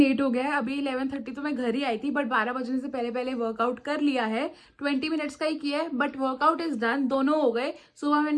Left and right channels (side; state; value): both; identical; correlation 1.00